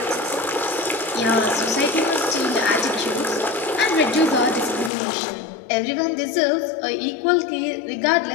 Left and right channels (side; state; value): right; drops out; at 4.9 s